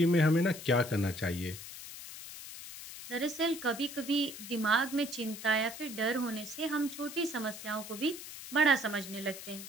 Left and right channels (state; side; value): noise; left; hiss, 12 dB below the sound